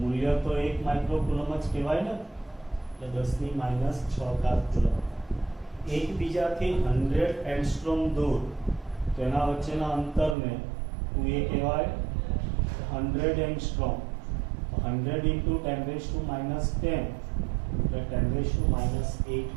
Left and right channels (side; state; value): left; drops out; at 10.4 s